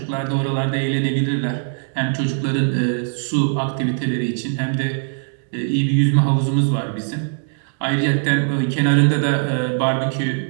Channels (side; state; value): left; silent; digital silence